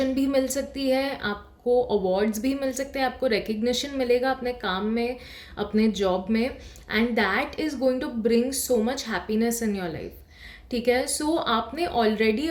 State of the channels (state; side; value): identical; both; correlation 1.00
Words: भी मिल सकती है, आपको अवार्ड्स भी मिल सकते हैं, आपको रिकग्निशन मिलेगा अपने काम में, अपने जॉब में, and that is going to bring so much happiness in your life, ठीक है। सो आपने ऑलरेडी